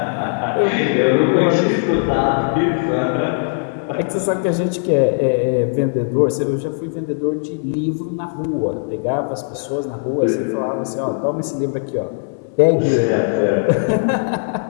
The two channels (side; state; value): right; silent; digital silence